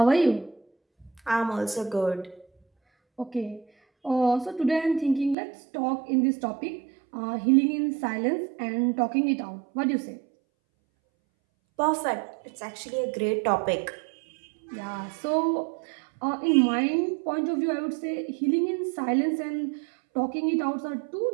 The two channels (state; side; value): drops out; left; at 5.4 s